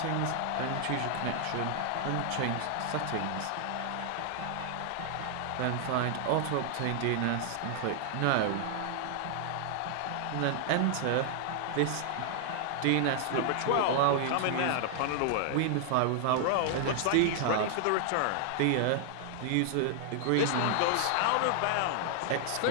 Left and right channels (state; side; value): different; both; correlation 0.00